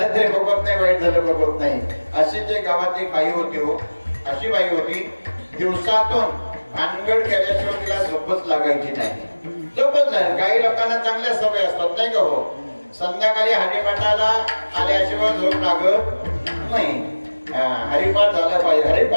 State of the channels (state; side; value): inverted; both; correlation -1.00